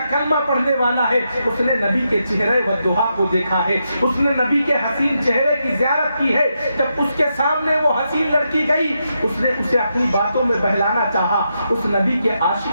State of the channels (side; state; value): both; inverted; correlation -0.83